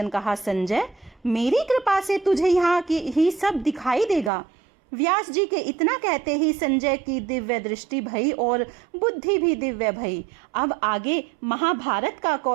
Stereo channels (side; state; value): left; drops out; at 4.3 s